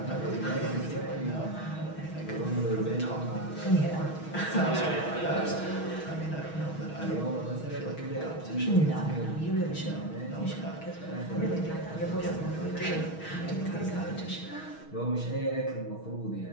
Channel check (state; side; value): late; right; 6.3 ms